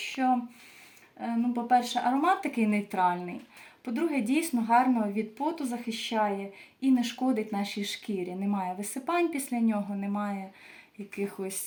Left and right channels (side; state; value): both; identical; correlation 1.00